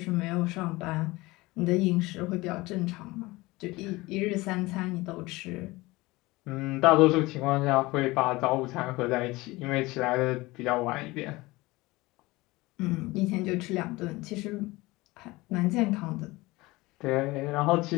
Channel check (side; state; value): right; quieter; 21.1 dB